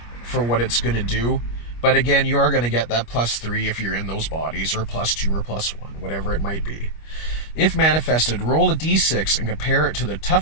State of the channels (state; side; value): late; right; 25 ms